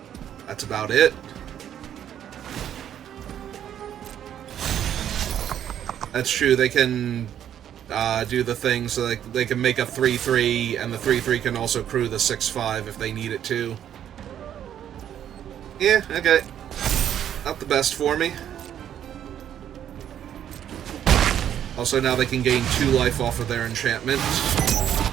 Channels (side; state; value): left; quieter; 10.1 dB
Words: that's about it. That's true, they can do the thing so they can make a 3/3, and the 3/3 can also crew the 6/5 if they need it to. Yeah, okay. Not the best for me. Also, now they can gain 2 life off of their enchantment.